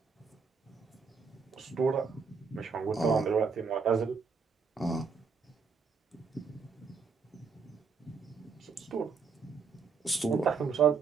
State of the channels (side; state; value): left; quieter; 5.4 dB